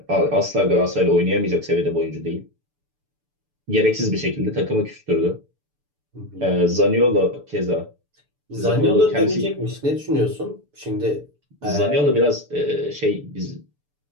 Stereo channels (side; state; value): left; late; 6.9 ms